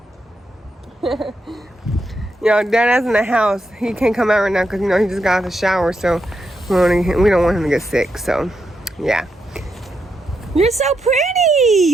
Yo, Dada's in the house. He can't come out right now because, he just got out of the shower. So we don't want him to get sick. So, yeah. You're so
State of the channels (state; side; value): normal; both; correlation 0.82